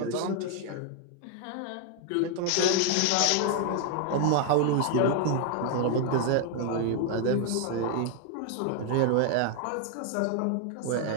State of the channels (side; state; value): both; different; correlation 0.00